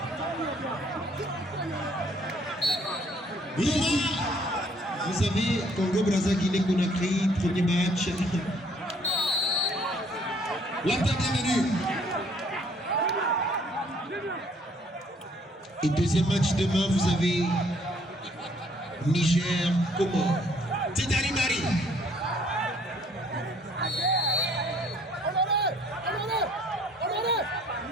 Vous savez, Congo-Brazza, Guinée-Conakry, premier match. L'Inter bienvenue. Et deuxième match demain, vous avez Niger, Comores. Tidari Mari.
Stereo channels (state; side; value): normal; both; correlation 0.62